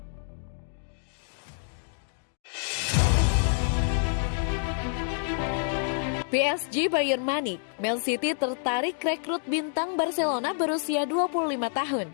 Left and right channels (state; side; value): silent; right; digital silence